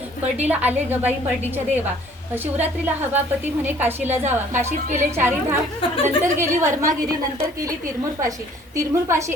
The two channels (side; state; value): both; normal; correlation 0.56